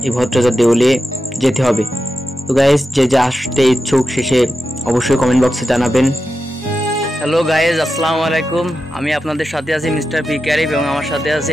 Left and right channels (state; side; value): normal; both; correlation 0.90